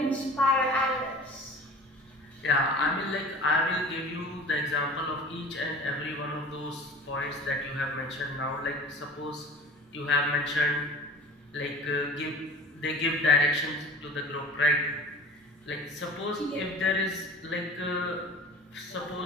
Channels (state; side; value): normal; both; correlation 0.41